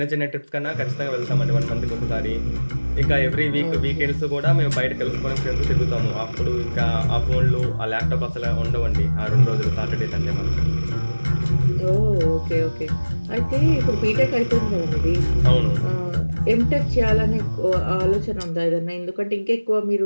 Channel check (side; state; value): both; inverted; correlation -1.00